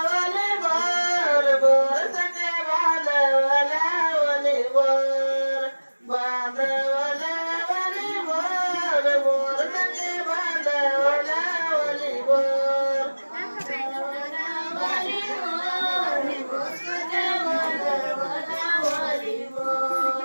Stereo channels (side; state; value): both; inverted; correlation -1.00